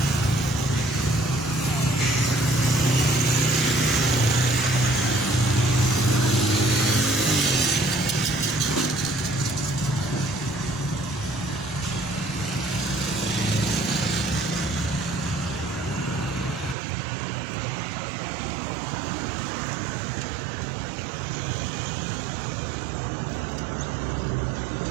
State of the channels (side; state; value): left; drops out; at 16.8 s